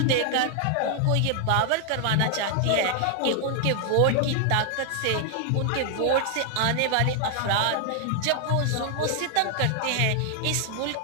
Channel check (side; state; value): both; different; correlation 0.00